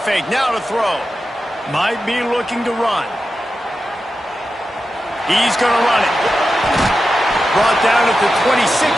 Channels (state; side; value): normal; both; correlation 0.91